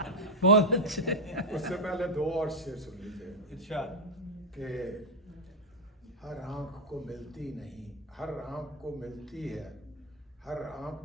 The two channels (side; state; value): both; normal; correlation 0.00